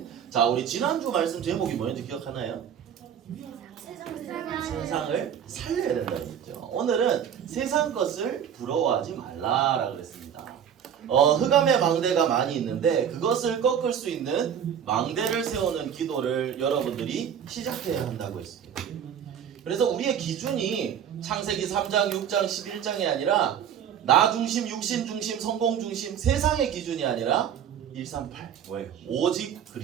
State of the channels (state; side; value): quieter; left; 8.7 dB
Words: 자, 우리 지난주 말씀 제목이 뭐였는지 기억하나요? 세상을 살려야 된다는 거죠. 오늘은 세상 것을 부러워하지 말라라 그랬습니다. 흑암의 망대가 많이 있는데 그것을 꺾을 수 있는 망대를 세우는 기도를 여러분들이 시작해야 한다고 했습니다. 그래서 우리의 기준이 창세기 3장, 6장, 11장이 아니라 나 중심, 육신 중심, 성공 중심, 세상의 기준이 아니라 138 뭐예요? 오직